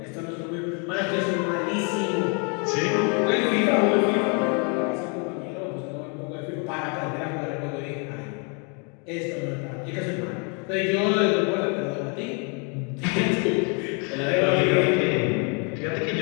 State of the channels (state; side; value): quieter; right; 35.9 dB